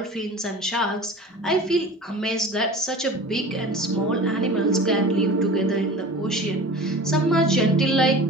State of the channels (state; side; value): normal; both; correlation 0.37